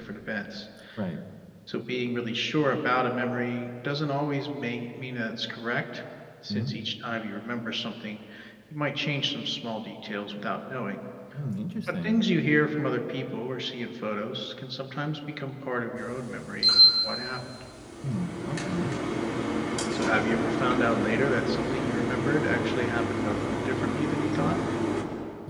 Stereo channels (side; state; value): both; identical; correlation 1.00